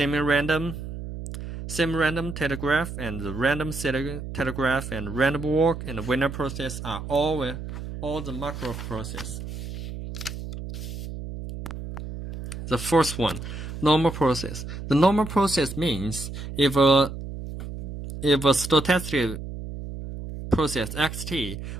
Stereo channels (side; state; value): right; noise; hum, 8 dB below the sound